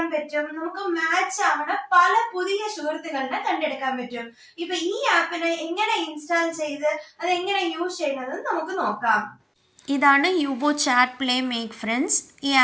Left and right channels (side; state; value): both; identical; correlation 1.00